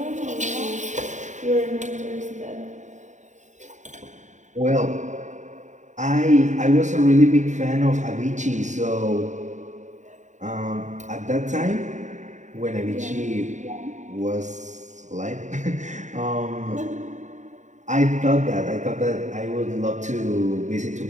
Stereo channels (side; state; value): left; late; 0.35 ms